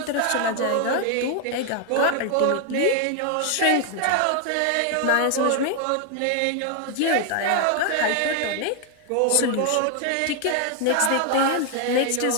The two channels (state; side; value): different; both; correlation 0.00